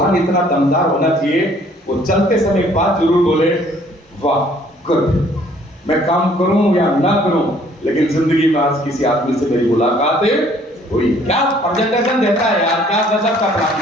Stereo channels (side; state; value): both; normal; correlation 0.59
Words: इतना दमदार होना चाहिए वो चलते समय एक बात जरूर बोले, वाह गुड, मैं काम करूं या ना करूं, लेकिन जिंदगी में आज किसी आदमी से मेरी मुलाकात हुई, क्या प्रेजेंटेशन देता है यार, क्या गजब का प्लान